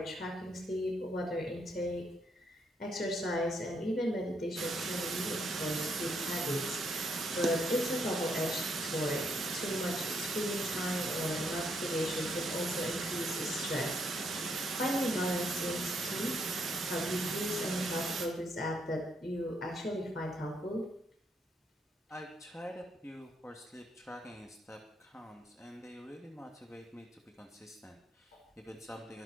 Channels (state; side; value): normal; both; correlation 0.74